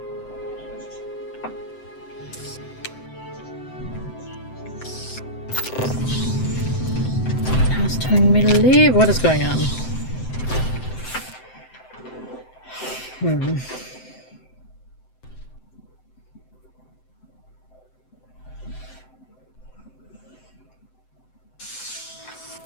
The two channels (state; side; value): late; right; 7.8 ms